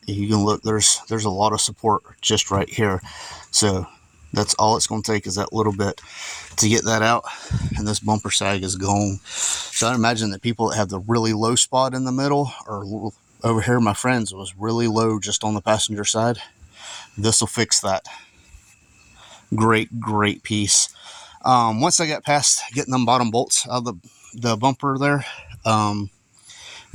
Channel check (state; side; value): identical; both; correlation 1.00